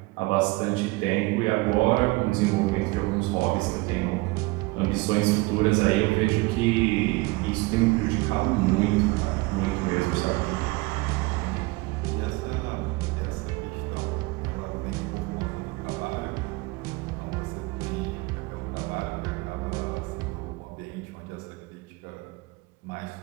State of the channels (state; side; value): quieter; left; 23.3 dB